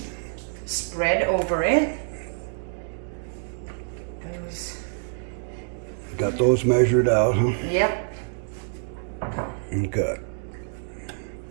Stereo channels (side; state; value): left; silent; 61 dB below the other